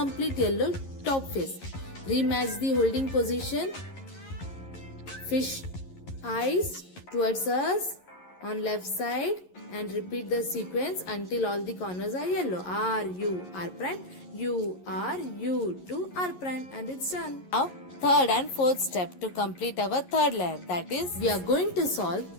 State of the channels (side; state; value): right; late; 11 ms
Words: yellow top face. Rematch the holding position. Fish eyes towards us on left side and repeat the sequence until all the corners are yellow. R, U, R prime, U, R, U2, R prime, and it's done. Now third and fourth step to complete our third layer. That is, we are going to solve